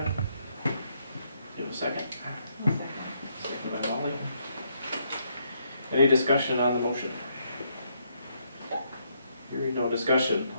Give a second. Second by Molly. Any discussion on the motion? Hearing no discussion,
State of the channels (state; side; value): inverted; both; correlation -0.75